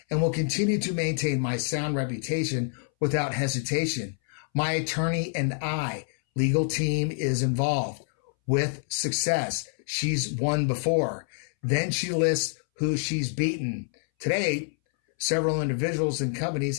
and will continue to maintain my sound reputation without hesitation. My attorney and I, legal team, is involved with success. She's won before. Then she lists who she's beaten. Today, several individuals and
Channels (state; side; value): silent; right; 60 dB below the other